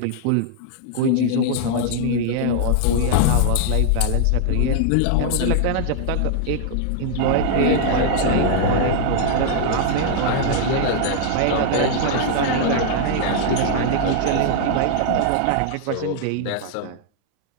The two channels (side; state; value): both; different; correlation -0.01